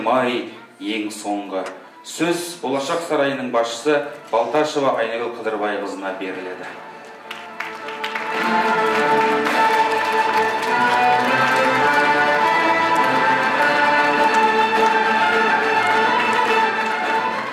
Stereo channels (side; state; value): both; identical; correlation 1.00